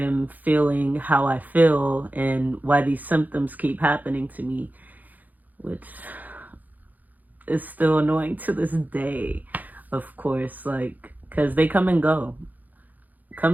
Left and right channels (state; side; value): late; left; 0.082 ms